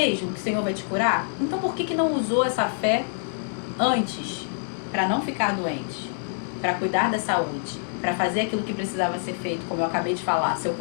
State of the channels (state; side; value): silent; right; digital silence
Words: que o Senhor vai te curar? Então por que não usou essa fé antes? Para não ficar doente. Para cuidar da saúde. Para fazer aquilo que precisava ser feito, como eu acabei de falar. Seu